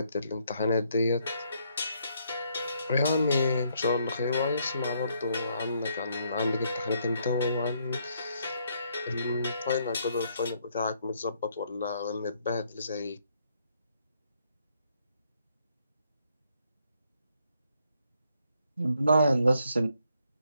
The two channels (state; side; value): inverted; both; correlation -0.72